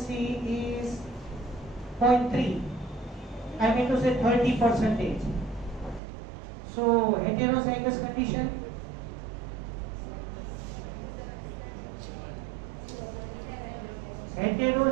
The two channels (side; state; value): left; drops out; at 6.0 s